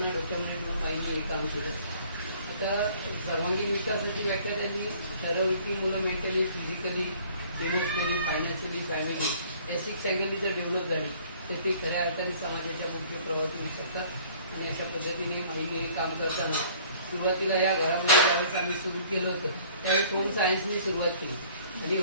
डोक्यामध्ये ठेवून बाईंनी हे काम केलं। आता सर्वांगीण विकासाची व्याख्या त्यांनी ठरवली की मुलं mentally, physically, emotionally, financially, family या 6 अँगलनी जर डेव्हलप झाली तर ते खऱ्या अर्थाने समाजाच्या मुख्य प्रवाहात येऊ शकतात। आणि अशा पद्धतीने बाईंनी हे काम करताना सुरुवातीला या घरामध्ये ज्यावेळेस आम्ही सुरू केलं होतं त्यावेळेस होम सायन्सनी सुरुवात केली आणि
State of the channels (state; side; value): inverted; both; correlation -0.54